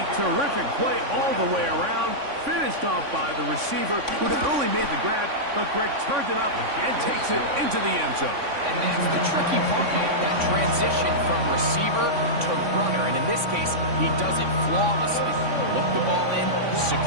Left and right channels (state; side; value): late; left; 3.5 ms